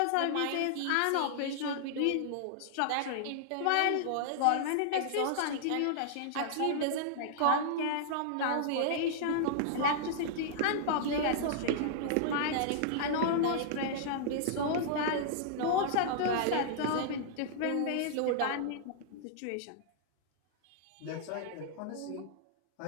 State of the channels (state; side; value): different; both; correlation -0.01